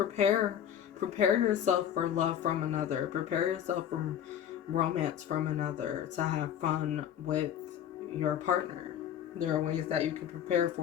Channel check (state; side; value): quieter; right; 9.7 dB